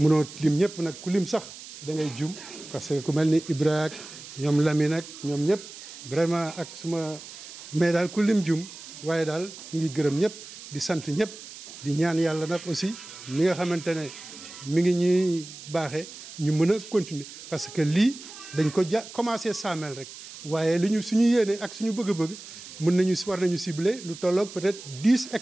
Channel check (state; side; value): noise; right; hiss, 15 dB below the sound